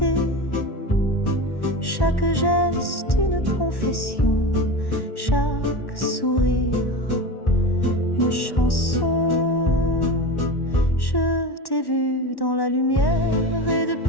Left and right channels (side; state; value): right; late; 1.1 ms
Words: Chaque geste une confession, chaque sourire une chanson. Je t'ai vu dans la lumière et